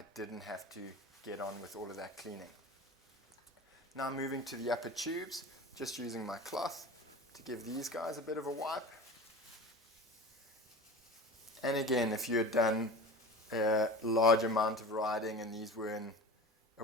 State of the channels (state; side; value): normal; both; correlation 0.35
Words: didn't have to get on with all of that cleaning. Now moving to the upper tubes, just using my cloth to give these guys a bit of a wipe. And again, if you had done a large amount of riding and these were in a